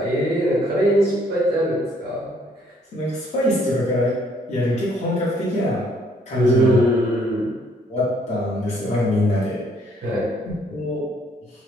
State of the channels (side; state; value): both; normal; correlation 0.65